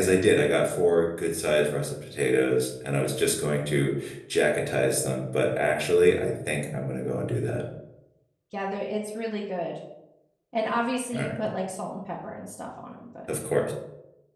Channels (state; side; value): identical; both; correlation 1.00